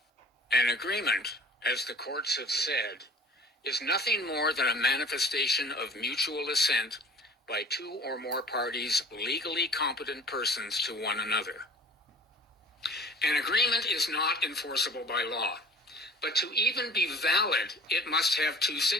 An agreement, as the courts have said, is nothing more than a manifestation of mutual assent by two or more parties, legally competent persons to one another. An agreement is not enforceable by law, but to even be valid, it must have two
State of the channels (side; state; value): both; normal; correlation 0.46